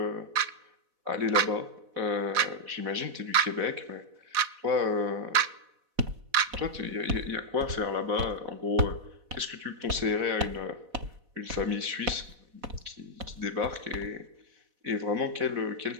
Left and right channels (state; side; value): late; left; 4.1 ms